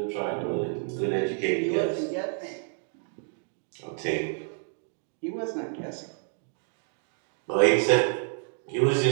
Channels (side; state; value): left; silent; 59 dB below the other